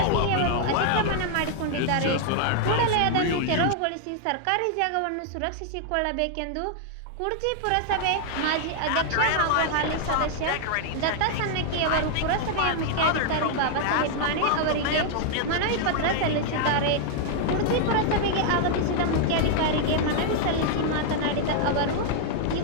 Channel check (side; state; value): both; different; correlation 0.00